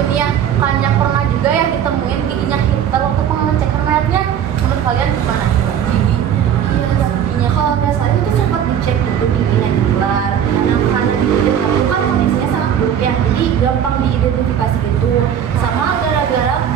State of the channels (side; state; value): left; quieter; 9.2 dB